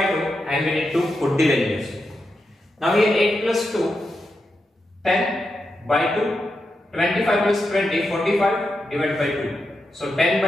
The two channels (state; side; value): normal; both; correlation 0.87